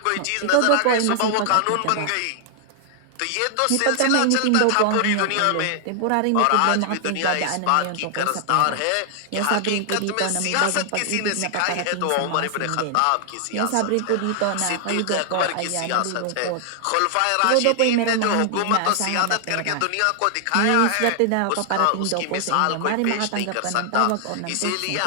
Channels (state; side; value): different; both; correlation 0.00